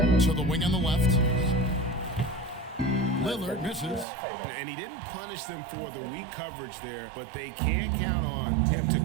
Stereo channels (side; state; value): left; drops out; at 4.0 s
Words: To the wing on the left. Lillard misses. And he didn't punish them for the weak coverage there, but they can't count on him to